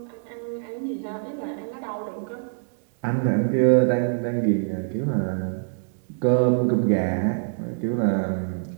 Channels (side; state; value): left; silent; digital silence